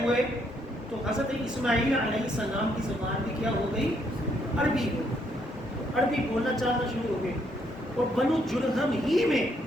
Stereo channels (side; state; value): both; normal; correlation 0.72